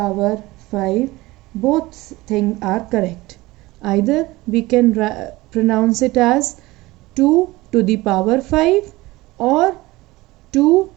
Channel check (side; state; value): left; quieter; 19.9 dB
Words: 5. Both things are correct. Either we can pronounce it as 2 to the power 5 or 2